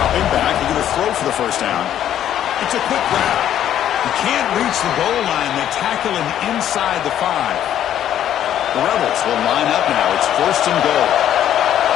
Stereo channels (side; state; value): right; quieter; 10.9 dB